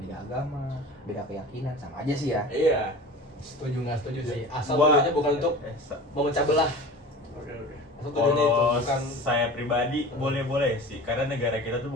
agama? Beda keyakinan? Sama aja sih ya. Iya. Setuju nggak setuju sih. Asal Gua- tujuannya bukan untuk memecah belah. Oke. Asal tujuannya itu Kalau bukan saya pribadi boleh-boleh sih, karena negara kita tuh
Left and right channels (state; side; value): normal; both; correlation 0.37